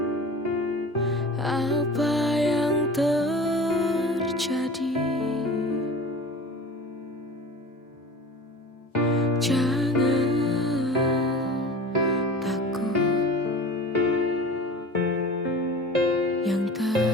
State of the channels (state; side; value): normal; both; correlation 0.37